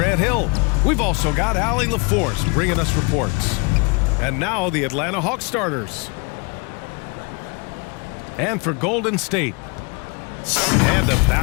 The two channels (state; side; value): quieter; right; 31.4 dB